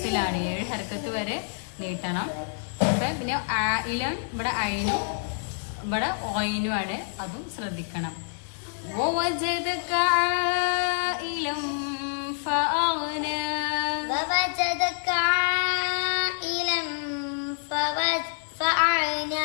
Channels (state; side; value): silent; right; digital silence